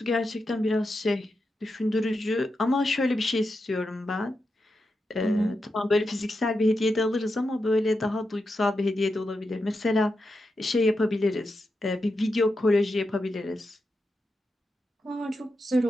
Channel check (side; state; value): both; normal; correlation 0.87